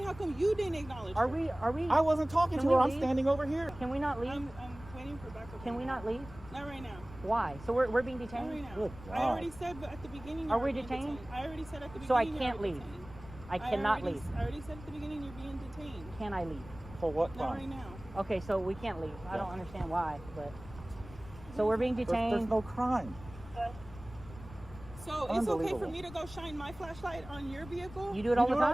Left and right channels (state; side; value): noise; left; rumble, 16 dB below the sound